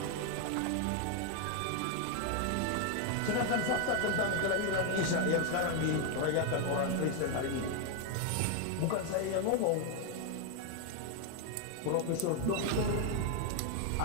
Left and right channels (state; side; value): different; both; correlation 0.01